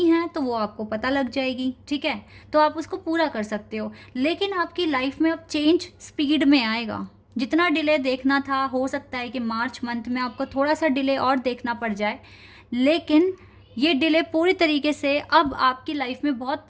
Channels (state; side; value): identical; both; correlation 1.00